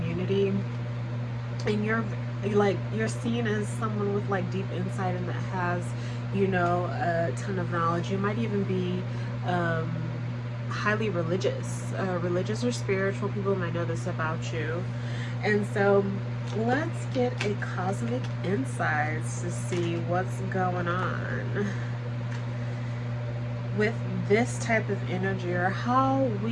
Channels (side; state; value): both; identical; correlation 1.00